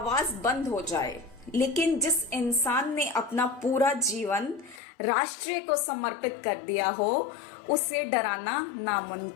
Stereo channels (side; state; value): right; drops out; at 4.8 s